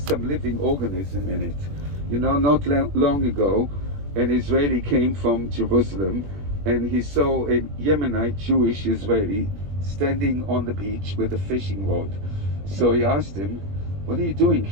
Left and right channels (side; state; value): left; late; 21 ms